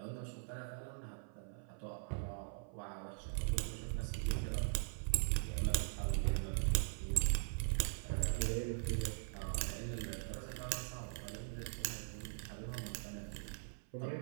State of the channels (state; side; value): silent; left; 50 dB below the other